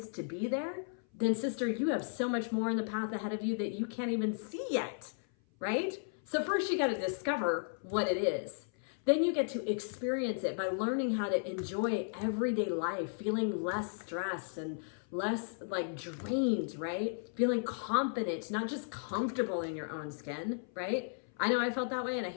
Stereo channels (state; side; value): silent; right; 55 dB below the other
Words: to be there, then sister, you have so much more in the path ahead of you that you can't even see yet, right? So first you got to discover what it is. Then you get to experience it by learning how to enjoy everyday life, feeling less stressed and less drained, right? Feeling confident, not just comfortable in your own skin, right? I know I felt that way and I